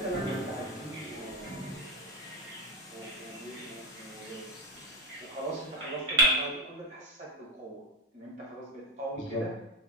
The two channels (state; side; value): normal; both; correlation 0.10